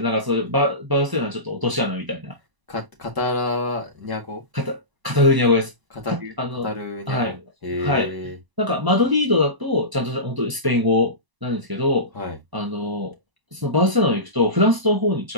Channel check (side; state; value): left; late; 1.0 ms